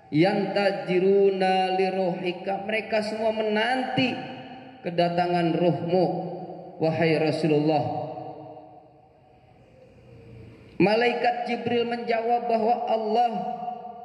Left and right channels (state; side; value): identical; both; correlation 1.00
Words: Yantajiruna liruhika, mereka semua menanti kedatangan ruhmu wahai Rasulullah. Malaikat Jibril menjawab bahwa Allah